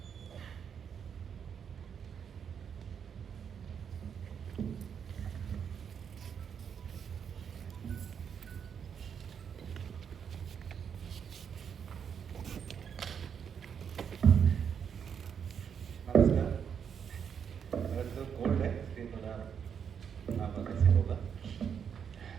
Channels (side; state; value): left; quieter; 7.5 dB